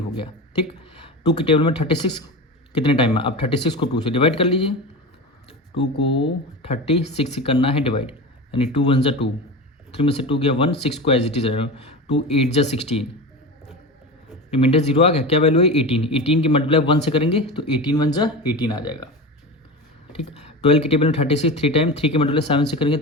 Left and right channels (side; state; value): both; normal; correlation 0.26